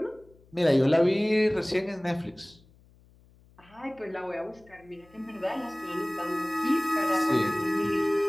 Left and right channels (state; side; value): noise; left; hum, 28 dB below the sound